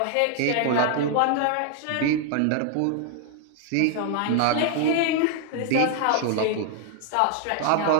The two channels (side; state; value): both; different; correlation 0.00